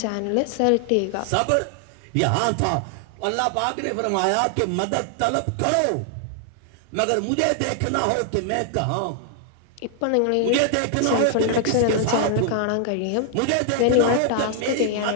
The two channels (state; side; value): different; both; correlation 0.00